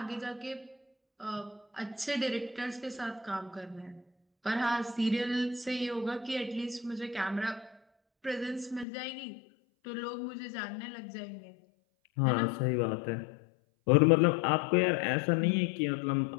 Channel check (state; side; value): drops out; right; at 8.8 s